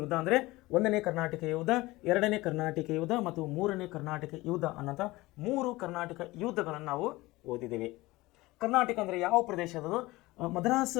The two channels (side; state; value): right; quieter; 20.1 dB